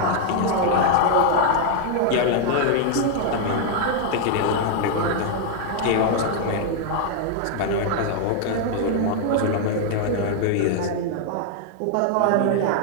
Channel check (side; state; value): both; different; correlation 0.00